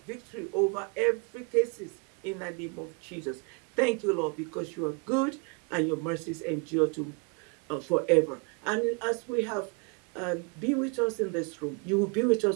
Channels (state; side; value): quieter; left; 34.6 dB